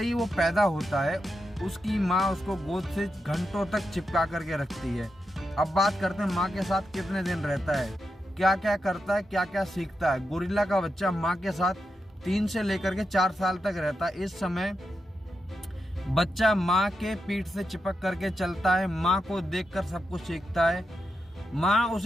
ही वो पैदा होता है, उसकी माँ उसको गोद से घंटों तक चिपका करके रखती है। अब बात करते हैं माँ के साथ कितने दिन रहता है, क्या क्या करता है, क्या क्या सीखता है। गोरिल्ला का बच्चा माँ के साथ 3 से लेकर के 4 साल तक रहता है। इस समय बच्चा माँ के पीठ से चिपक करके चलता है। माँ को देखकर सब कुछ सीखता है। माँ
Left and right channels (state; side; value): normal; both; correlation 0.86